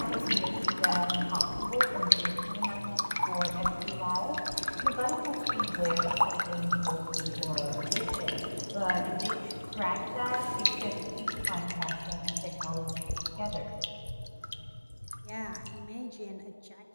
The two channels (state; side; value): inverted; both; correlation -1.00